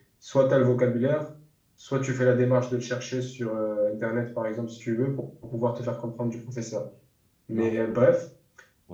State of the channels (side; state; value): both; identical; correlation 1.00